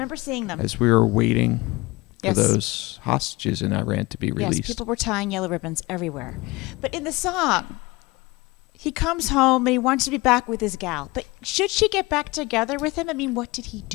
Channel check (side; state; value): right; quieter; 22.6 dB